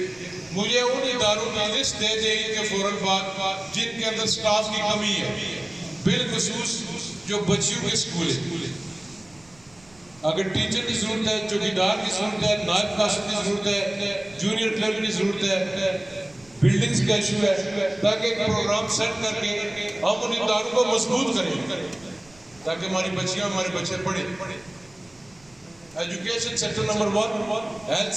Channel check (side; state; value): right; noise; rumble, 27 dB below the sound